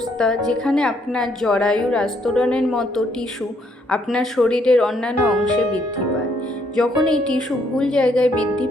যেখানে আপনার জরায়ুর আস্তরণের মতো টিস্যু আপনার শরীরের অন্যান্য অংশে বৃদ্ধি পায়। যখন এই টিস্যু ভুল জায়গায় বৃদ্ধি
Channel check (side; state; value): both; normal; correlation 0.70